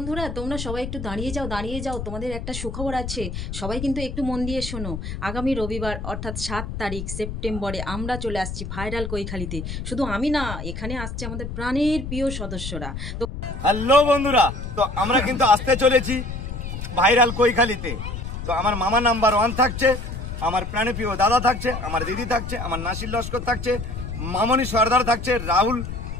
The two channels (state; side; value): noise; left; rumble, 7 dB below the sound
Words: তোমরা সবাই একটু দাঁড়িয়ে যাও তোমাদের একটা সুখবর আছে। সবাই কিন্তু একটু মন দিয়ে শোনো। আগামী রবিবার অর্থাৎ 7 তারিখ সেপ্টেম্বরে আমরা চলে আসছি ভাইরাল কৈখালিতে। শুধু আমি না, এখানে আসছে আমাদের প্রাণের প্রিয় সদস্যরা। তো হ্যালো বন্ধুরা, তো আমরা কিন্তু আসতে চলেছি ভাইরাল কৈখালিতে। তো আমার মামা নাম্বার 1 থাকছে, আমার প্রাণপ্রিয় দাদা থাকছে, আমার দিদি থাকছে, আমার নাসির লস্কর থাকছে, মামনি সর্দার থাকছে, রাহুল